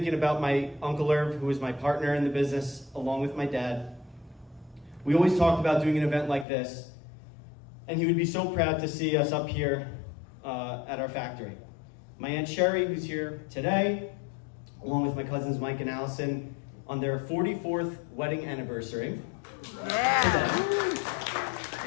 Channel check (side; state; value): right; drops out; at 6.5 s